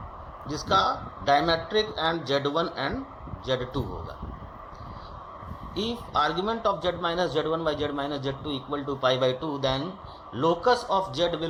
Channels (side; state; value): both; identical; correlation 1.00